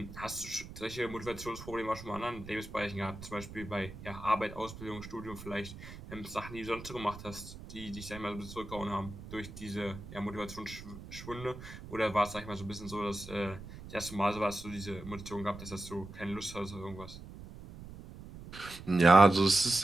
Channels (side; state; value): right; noise; rumble, 14 dB below the sound